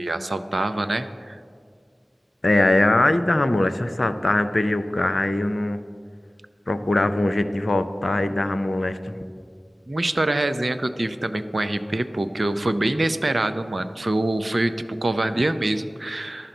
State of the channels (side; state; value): both; normal; correlation 0.96